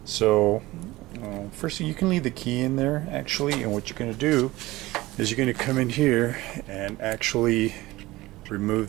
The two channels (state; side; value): quieter; left; 18.9 dB